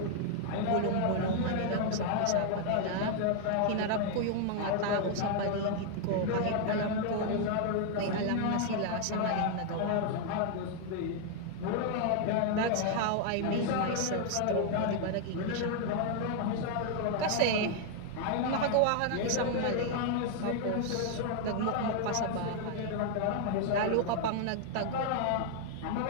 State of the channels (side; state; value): both; different; correlation 0.00